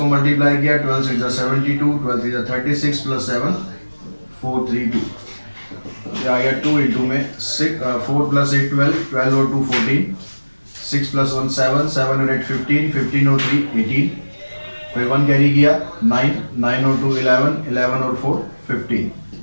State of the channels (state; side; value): inverted; both; correlation -1.00